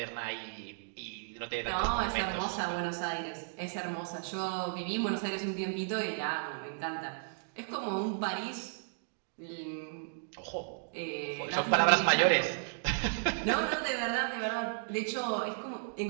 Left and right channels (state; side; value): silent; left; digital silence